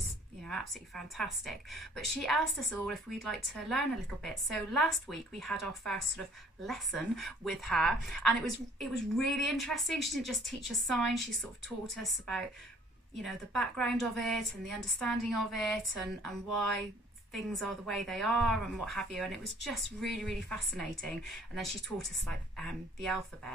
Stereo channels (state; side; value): normal; both; correlation 0.57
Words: you know, absolutely fantastic. But she asked us all if we'd like to learn a little bit. So last week we had our first sort of lesson with her, and it was really interesting. She didn't just teach us signs, she sort of taught us about, you know, the background of it and the understanding of it, and why things are the way they are and what have you, and it was just really, really fascinating. And then she taught us like the